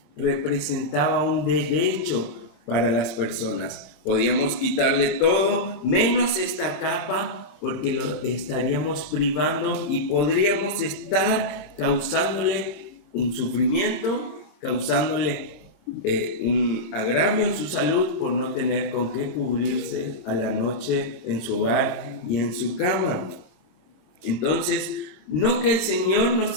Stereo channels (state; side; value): late; right; 26 ms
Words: representaba un derecho para las personas. Podíamos quitarle todo menos esta capa porque lo estaríamos privando y podríamos estar causándole un sufrimiento, causándole un agravio en su salud por no tener con qué cubrirse a la noche en su hogar y en su cama. Entonces, no que el Señor